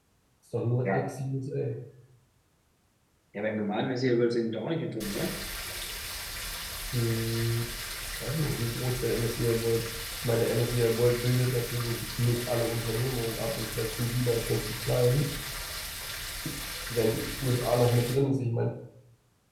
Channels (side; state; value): both; identical; correlation 1.00